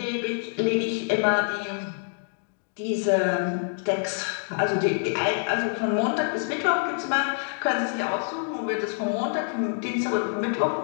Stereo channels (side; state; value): right; silent; 61 dB below the other